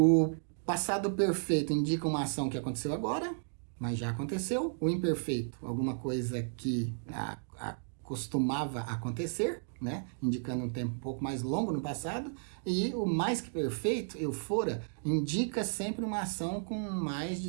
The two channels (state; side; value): silent; left; digital silence